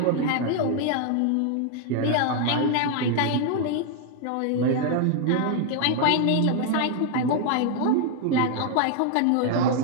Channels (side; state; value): both; different; correlation 0.00